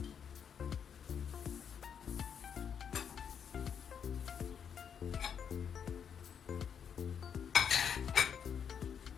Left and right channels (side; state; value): right; quieter; 7.6 dB